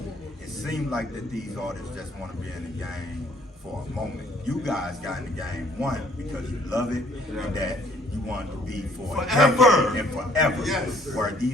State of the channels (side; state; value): both; normal; correlation 0.61